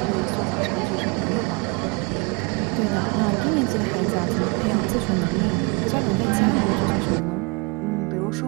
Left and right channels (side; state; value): left; quieter; 30.3 dB